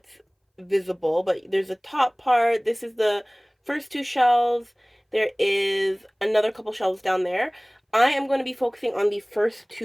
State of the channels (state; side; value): identical; both; correlation 1.00